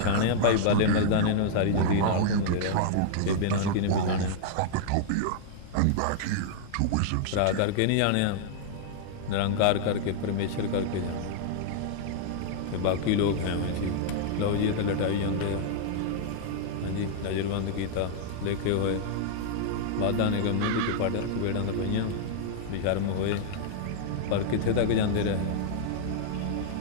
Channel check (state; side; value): different; both; correlation -0.01